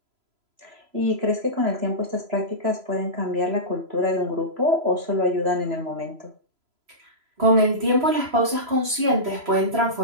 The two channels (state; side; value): late; left; 3.0 ms